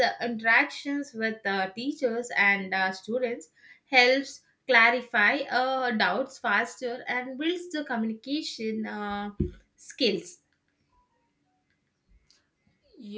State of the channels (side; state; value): both; identical; correlation 1.00